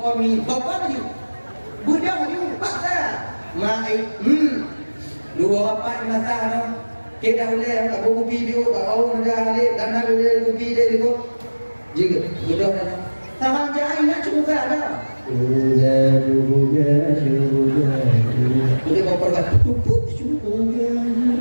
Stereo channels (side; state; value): both; inverted; correlation -1.00